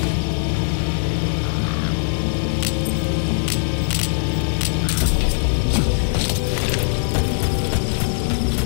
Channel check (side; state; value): right; silent; digital silence